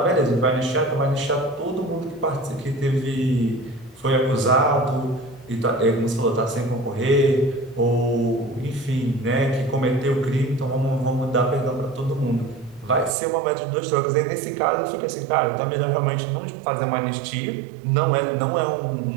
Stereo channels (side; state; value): left; drops out; at 13.2 s